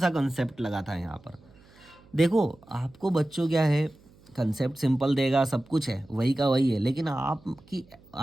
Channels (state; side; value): noise; right; hum, 27 dB below the sound